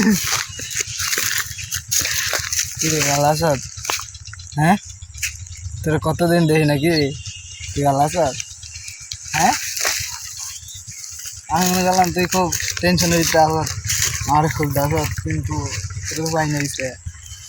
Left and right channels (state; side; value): identical; both; correlation 1.00